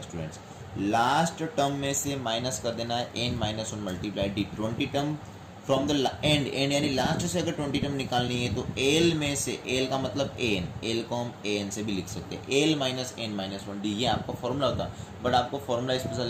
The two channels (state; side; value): identical; both; correlation 1.00